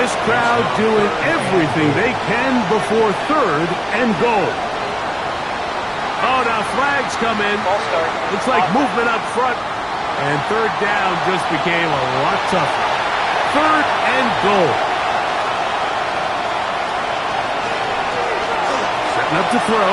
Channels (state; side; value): identical; both; correlation 1.00